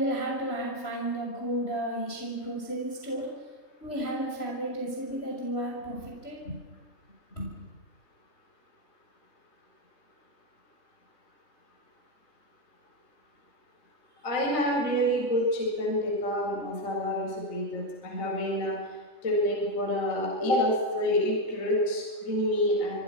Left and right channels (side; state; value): right; late; 3.2 ms